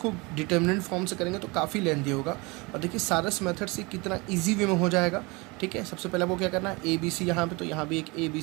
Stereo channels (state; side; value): quieter; left; 26.1 dB